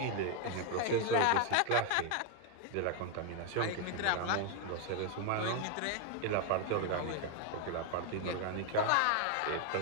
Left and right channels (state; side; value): different; both; correlation 0.01